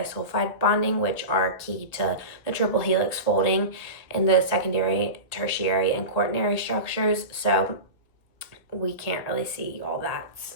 bonding, which are key to the triple helix folding in the secondary, tertiary, and quaternary structures. So we can't really see all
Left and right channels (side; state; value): right; late; 1.9 ms